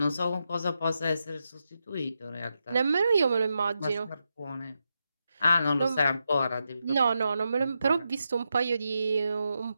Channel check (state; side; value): inverted; both; correlation -0.86